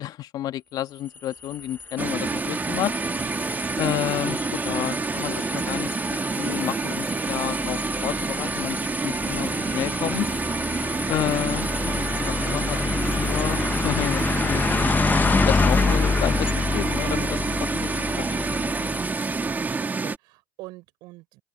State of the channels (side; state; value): both; normal; correlation 0.67